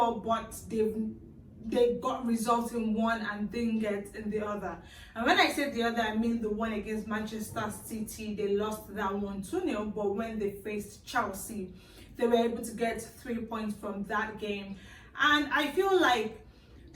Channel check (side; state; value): both; identical; correlation 1.00